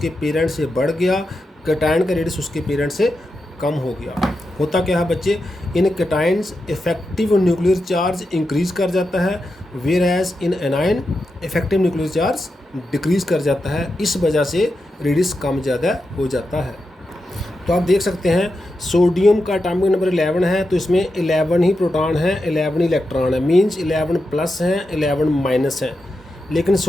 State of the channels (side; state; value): both; normal; correlation 0.88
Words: पेरेंट से बढ़ गया, कैटायन का रेडियस उसके पेरेंट से कम हो गया। होता क्या है बच्चे, in cations effective nuclear charge increase कर जाता है, whereas in anion effective nuclear charge decrease कर जाता है। इस वजह से रेडियस कम ज़्यादा हो जाता है। तो आप देख सकते हैं सोडियम का एटॉमिक नंबर 11 है, तो इसमें 11 ही प्रोटॉन हैं, 11 इलेक्ट्रॉन है, मींस 11 प्लस हैं, 11 माइनस हैं। लेकिन